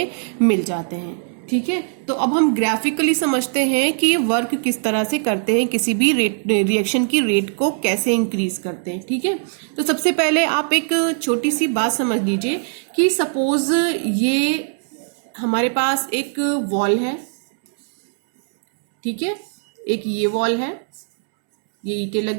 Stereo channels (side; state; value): left; silent; 66 dB below the other